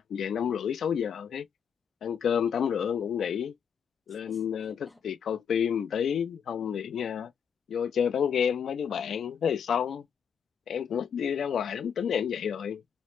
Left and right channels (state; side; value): quieter; right; 7.6 dB